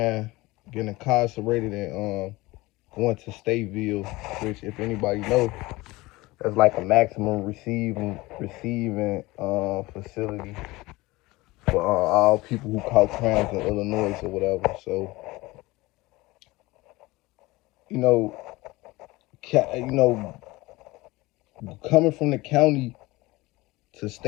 getting incarcerated and going to Stateville, which if anybody know, that's like a maximum receiving facility for all people who caught crimes in Illinois or whatever. So you know, coming from the county to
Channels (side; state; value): right; quieter; 20.9 dB